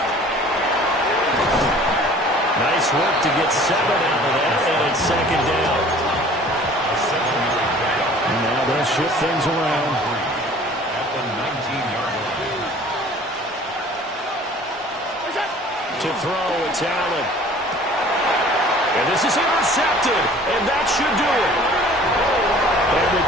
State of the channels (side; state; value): both; normal; correlation 0.49